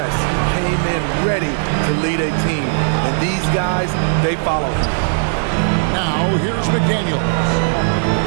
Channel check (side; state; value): left; silent; digital silence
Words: He came in ready to lead a team. And these guys, they follow him. Now, here's McDaniel.